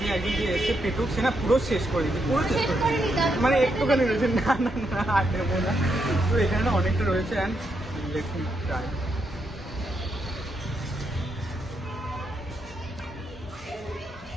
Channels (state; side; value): normal; both; correlation 0.80